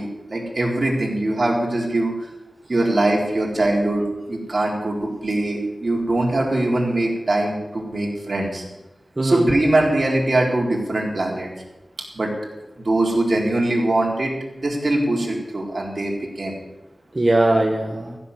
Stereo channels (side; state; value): both; normal; correlation 0.96